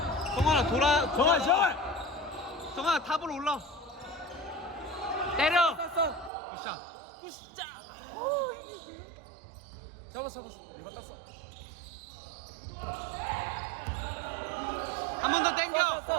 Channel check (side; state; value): left; drops out; at 6.3 s